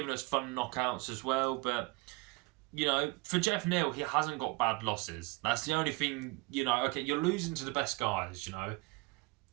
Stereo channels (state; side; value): quieter; left; 25.5 dB